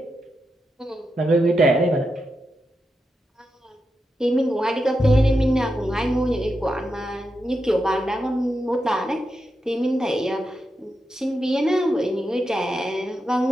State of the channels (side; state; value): both; normal; correlation 0.87